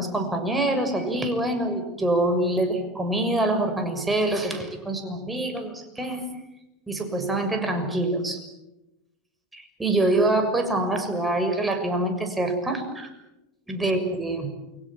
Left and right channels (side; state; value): both; normal; correlation 0.40